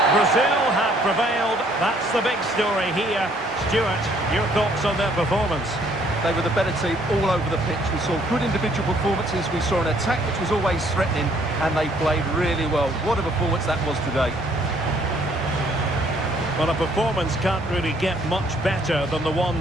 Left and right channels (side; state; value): both; normal; correlation 0.64